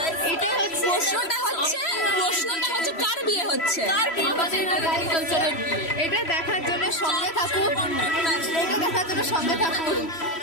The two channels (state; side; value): late; right; 3.0 ms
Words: এটাই হচ্ছে প্রশ্নটা হচ্ছে কার বিয়ে হচ্ছে? আমাদের এগ্রিকালচারের বিয়ে। এটা দেখার জন্য সঙ্গে থাকুন, এটা দেখার জন্য সঙ্গে থাকুন।